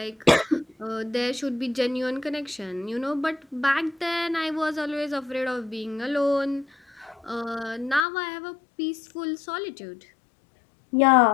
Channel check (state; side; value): drops out; right; at 8.1 s